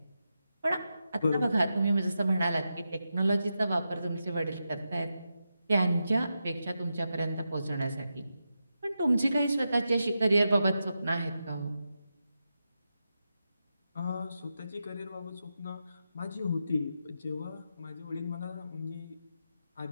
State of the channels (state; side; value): inverted; both; correlation -0.88